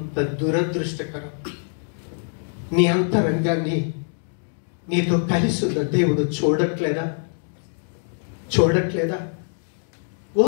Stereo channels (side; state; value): right; silent; 58 dB below the other